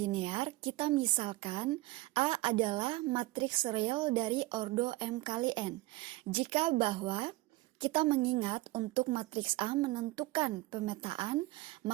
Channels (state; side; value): quieter; left; 19.4 dB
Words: kita misalkan A adalah matriks real dari ordo M kali N. Jika bahwa kita mengingat untuk matriks A menentukan pemetaan,